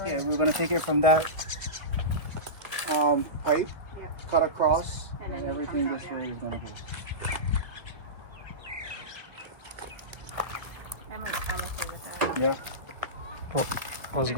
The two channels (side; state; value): left; late; 2.0 ms